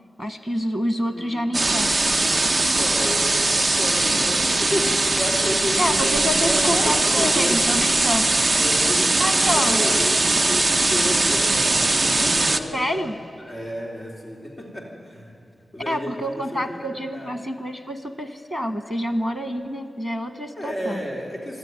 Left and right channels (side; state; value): both; normal; correlation 0.94